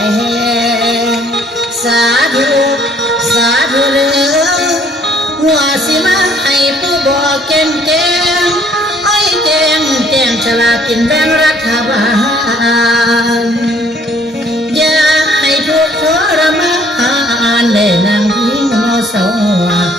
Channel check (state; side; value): normal; both; correlation 0.60